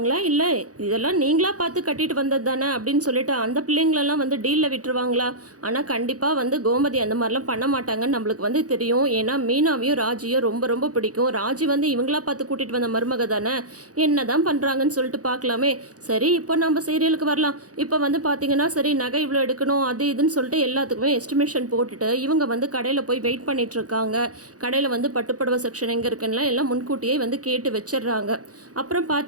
இல்லை இதெல்லாம் நீங்களா பார்த்து கட்டிட்டு வந்தது தானே அப்படின்னு சொல்லிட்டு அந்த பிள்ளைங்களெல்லாம் வந்து டீலில் விட்டுருவாங்களா? ஆனால் கண்டிப்பாக வந்து கோமதி அந்த மாதிரிலாம் பண்ண மாட்டாங்கன்னு நம்மளுக்கு வந்து தெரியும். ஏன்னா மீனாவையும் ராஜியும் ரொம்ப ரொம்ப பிடிக்கும். ராஜி வந்து இவங்களா பார்த்து கூட்டிகிட்டு வந்த மருமக தானே, என்ன தான் பண்ணுறாங்கன்னு சொல்லிட்டு பார்க்கலாமே. சரி, இப்போ நம்ம சீரியலுக்கு வரலாம். இப்போ வந்து பார்த்தீங்கன்னா, சரி நகை இவ்வளோ எடுக்கணும் அது இதுன்னு சொல்லிட்டு எல்லாத்துக்குமே எஸ்டிமேஷன் போட்டுட்டு இவங்க வந்து கடையில் போய் வெயிட் பண்ணிட்டு இருக்காங்க. கடையில் வந்து பட்டுப்புடவை செக்ஷன் எங்கே இருக்குன்னா எல்லாம் முன்கூட்டியே வந்து கேட்டு வச்சிடுறாங்க. அப்புறம்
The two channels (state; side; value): late; left; 0.67 ms